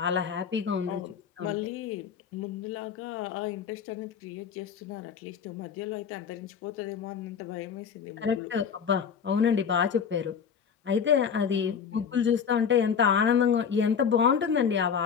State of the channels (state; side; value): quieter; right; 7.1 dB